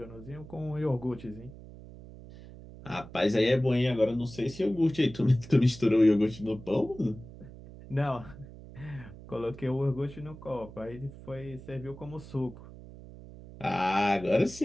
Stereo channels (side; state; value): right; noise; hum, 16 dB below the sound